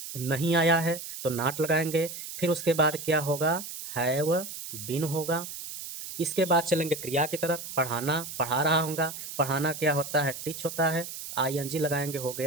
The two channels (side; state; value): right; noise; hiss, 9 dB below the sound